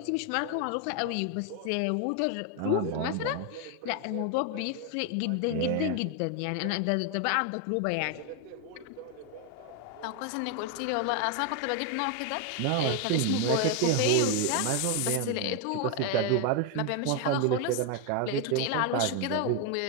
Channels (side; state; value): both; different; correlation 0.01